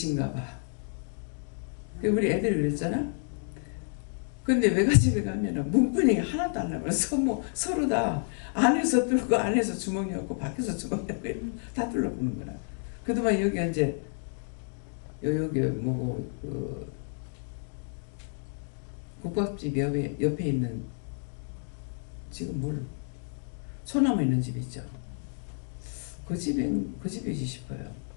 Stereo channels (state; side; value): silent; right; 58 dB below the other